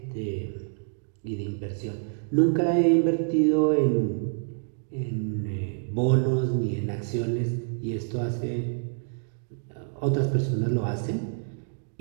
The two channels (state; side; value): silent; left; digital silence